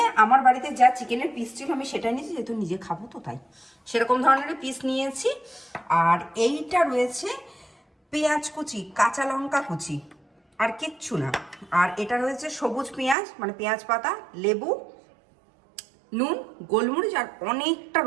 আমার বাড়িতে যা চিকেনের পিস ছিল আমি সেটাই নিয়েছি, যেহেতু নিজে খাবো তো তাই সেরকম ধরনের পিস নিয়েছি। আর এইটা রয়েছে পেঁয়াজ কুচি, কাঁচা লঙ্কা কুচি, আর কিচ্ছু না। আর এটা রয়েছে সবুজ পেঁয়াজ, মানে পেঁয়াজ পাতা, লেবু, নুন, গোলমরিচ, আর অনেকটা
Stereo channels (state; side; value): drops out; left; at 13.2 s